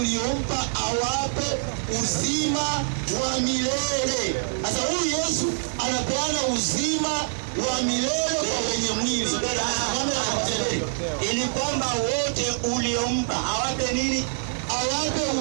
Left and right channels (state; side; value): silent; left; digital silence